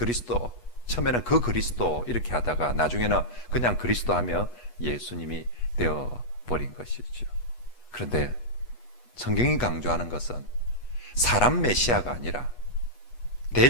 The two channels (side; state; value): right; late; 8.2 ms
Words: 처음에는 그 그리스도 이렇게 하다가 나중에는 그냥 그리스도 하면 예수님이 되어버린 것이죠. 그런데 성경이 강조하는 것은 사람 메시아가 아니라,